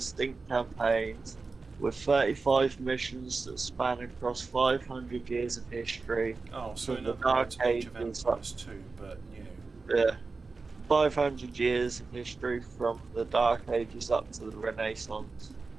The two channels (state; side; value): quieter; left; 4.1 dB